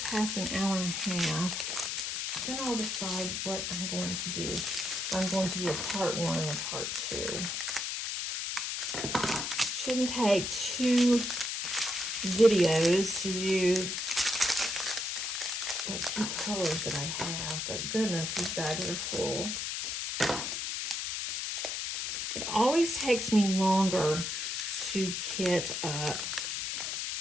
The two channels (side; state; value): left; noise; hiss, 2 dB below the sound